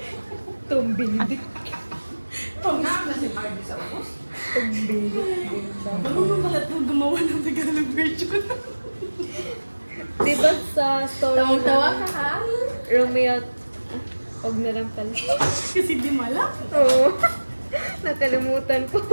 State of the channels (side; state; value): both; inverted; correlation -1.00